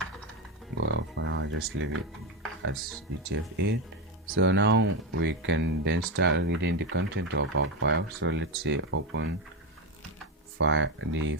Well, for now just leave it as UTF-8. So now we can then start reading the content of our file. So let's say open the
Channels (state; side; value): normal; both; correlation 0.11